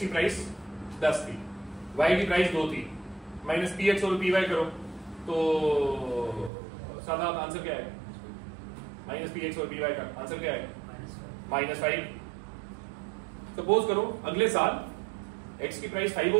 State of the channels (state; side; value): drops out; left; at 6.5 s